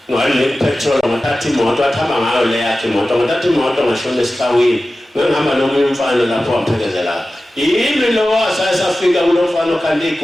ngalipetrol ngathatha imoto athamba ngayo le yakhe imoto ngathatha imoto ngashona esikhawini ngihamba nomunye umfana lapho waphekezela yimi lo wasayisafika kulo mfana okhanda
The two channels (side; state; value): both; normal; correlation 0.95